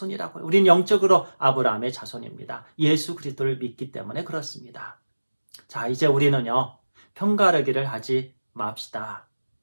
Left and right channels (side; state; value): both; inverted; correlation -1.00